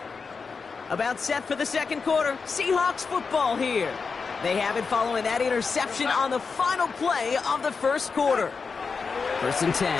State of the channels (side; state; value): right; quieter; 5.0 dB